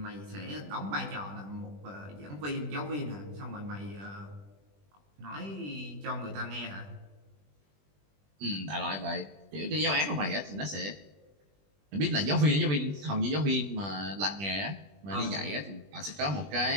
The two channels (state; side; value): late; left; 20 ms